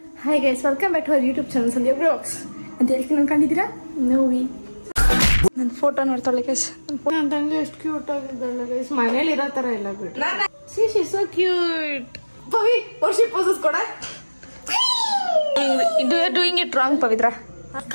Hi guys, welcome back to our YouTube channel Sandhya blogs ಅಂತ ಹೇಳ್ತೀನಿ. ಅನ್ಕೊಂಡಿದ್ದೀರಾ? ನೋವಿ ನನ್ನ ಫೋಟೋ ನೋಡ್ತಾಳೆ ಗೈಸ್. ನನ್ನ ತಂಗಿ ಎಷ್ಟು ಕ್ಯೂಟ್ ಆಗಿದ್ದಾಳೆ ಗೈಸ್. ಮನೇಲಿ ಇರೋ ತರ ಇಲ್ಲ ಬಿಟ್ಟು. She so cute. Pavi Varshi poses ಕೊಡ. Doing it wrong Pavitra.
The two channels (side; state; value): both; inverted; correlation -1.00